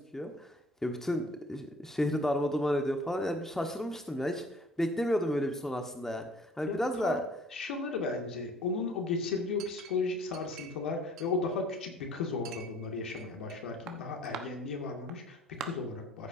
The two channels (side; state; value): both; normal; correlation 0.53